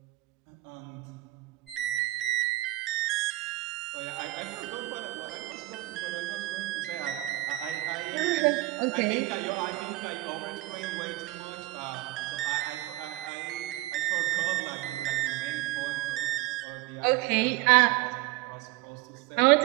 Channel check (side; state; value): left; quieter; 18.8 dB